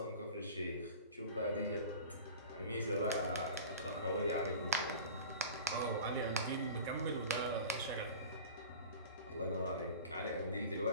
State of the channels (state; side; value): inverted; both; correlation -0.38